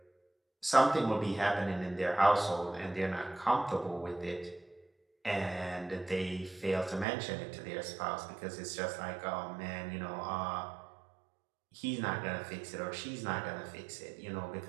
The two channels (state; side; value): drops out; left; at 7.1 s